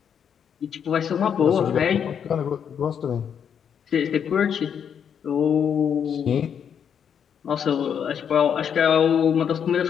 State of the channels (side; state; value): right; quieter; 7.9 dB